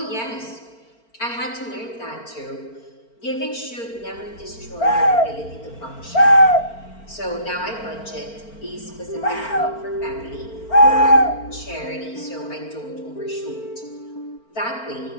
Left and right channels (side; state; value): right; late; 4.4 ms